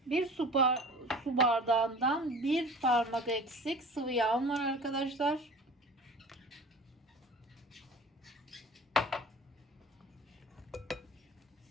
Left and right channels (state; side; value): normal; both; correlation 0.41